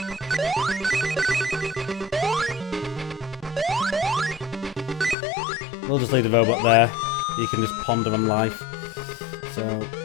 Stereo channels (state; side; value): drops out; right; at 5.2 s